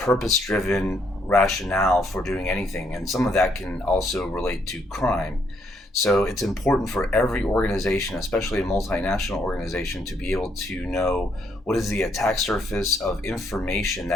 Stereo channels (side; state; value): both; normal; correlation 0.72